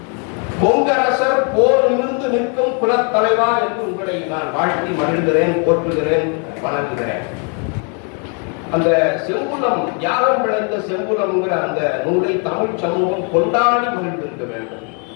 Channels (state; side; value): quieter; right; 38.4 dB